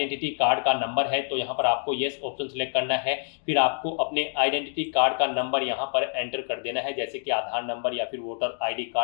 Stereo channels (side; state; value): right; silent; digital silence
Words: कार्ड का नंबर है, तो यहाँ पर आपको यस ऑप्शन सेलेक्ट करना है। फिर आपको अपने आइडेंटिटी कार्ड का नंबर यहाँ पर एंटर कर देना है, जैसे कि आधार नंबर या फिर वोटर आईडी